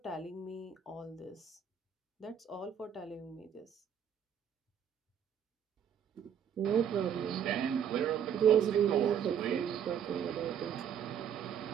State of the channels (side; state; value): left; quieter; 8.5 dB